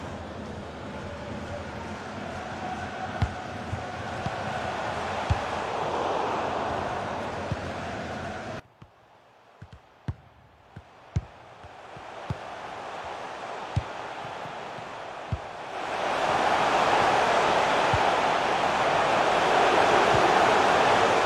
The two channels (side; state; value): both; identical; correlation 1.00